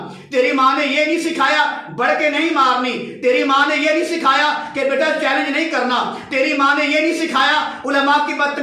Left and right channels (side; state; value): both; identical; correlation 1.00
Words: تیری ماں نے یہ نہیں سکھایا بڑھ کے نہیں مارنی، تیری ماں نے یہ نہیں سکھایا کہ بیٹا چیلنج نہیں کرنا، تیری ماں نے یہ نہیں سکھایا علماء کی